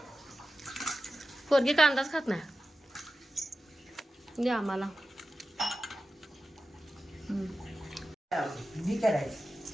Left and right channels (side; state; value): both; normal; correlation 0.93